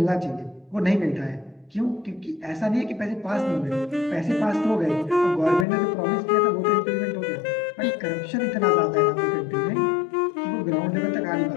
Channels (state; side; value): drops out; right; at 5.7 s